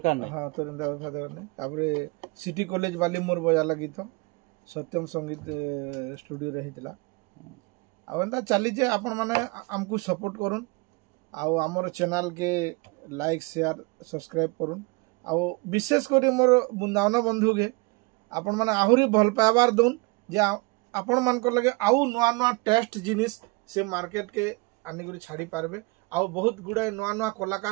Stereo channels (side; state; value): left; quieter; 26.8 dB